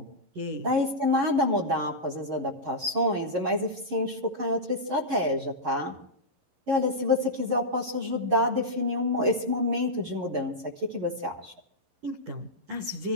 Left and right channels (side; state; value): left; late; 11 ms